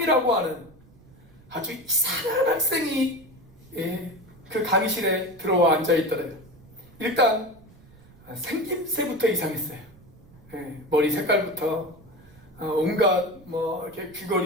하는 아주 이상한 학생이 그 강의실에 들어와 앉아 있더래요. 일단 생김새부터 이상했어요. 머리 색깔부터 온갖 이렇게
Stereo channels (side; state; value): right; noise; rumble, 25 dB below the sound